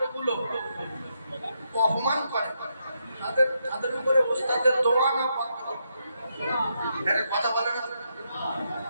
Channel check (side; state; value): both; inverted; correlation -0.80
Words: অপমান করে, তাদের উপরে ওস্তাদের দোয়া না বন্ধ হবে। কথা বলে না,